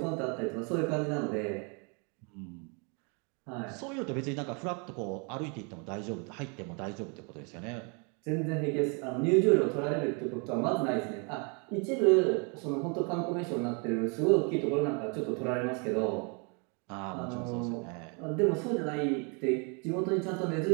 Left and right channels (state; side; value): quieter; left; 34.8 dB